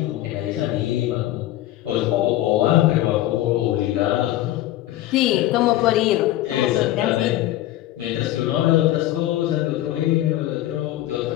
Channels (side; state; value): right; quieter; 14.6 dB